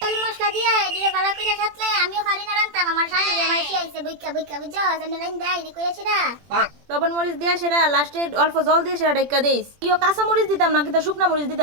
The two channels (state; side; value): late; left; 21 ms